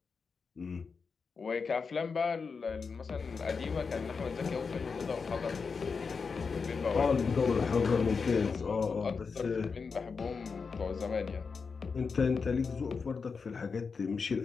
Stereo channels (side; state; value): right; quieter; 5.2 dB